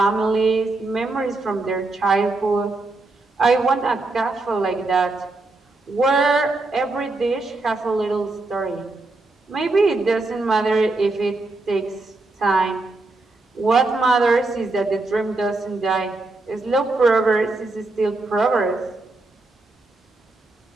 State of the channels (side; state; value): left; quieter; 3.2 dB